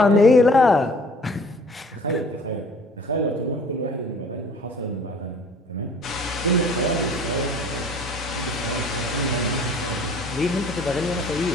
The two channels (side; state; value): both; normal; correlation 0.51